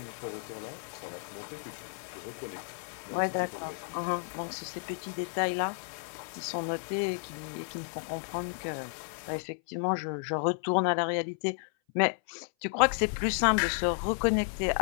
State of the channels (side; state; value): right; silent; 56 dB below the other